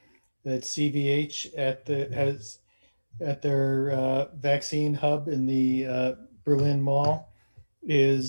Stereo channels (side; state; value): both; inverted; correlation -1.00